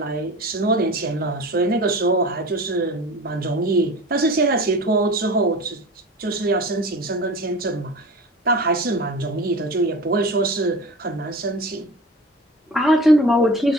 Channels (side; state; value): both; normal; correlation 0.36